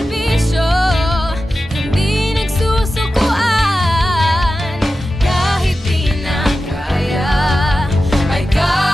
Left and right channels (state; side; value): normal; both; correlation 0.93